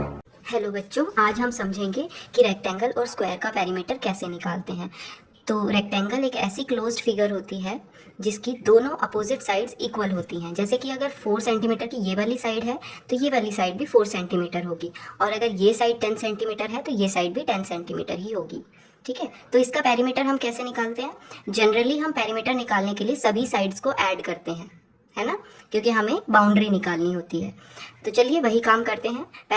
Hello बच्चों, आज हम समझेंगे कि रेक्टेंगल और स्क्वायर का पेरीमीटर कैसे निकालते हैं। तो रेक्टेंगल एक ऐसी क्लोज्ड फिगर होती है जिसकी दोनों अपोजिट साइड्स इक्वल होती हैं। जैसे कि अगर 4 सेंटीमीटर की ये वाली साइड है तो ये वाली साइड भी 4 सेंटीमीटर होगी, और अगर ये साइड 10 सेंटीमीटर है तो ये साइड भी 10 सेंटीमीटर ही होगी। ठीक है, तो इसका पेरीमीटर हम कैसे निकालते हैं? जनरली हम पेरीमीटर निकालने के लिए सभी साइड्स को ऐड करते हैं, है ना, क्योंकि हमें बाउंड्री निकालनी होती है। तो चलिए वही काम करते हैं।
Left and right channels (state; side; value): identical; both; correlation 1.00